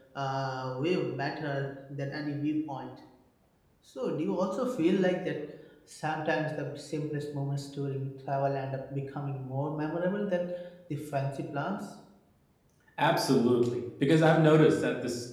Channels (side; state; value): both; identical; correlation 1.00